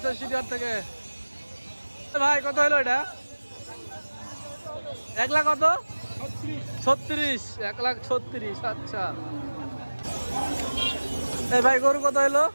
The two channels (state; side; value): inverted; both; correlation -1.00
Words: সিটিহাট থেকে। ভাই কত হলো এটা? 1,00,000 কত? 36। 1,36,000। আচ্ছা। ভাই গরু কত হলো?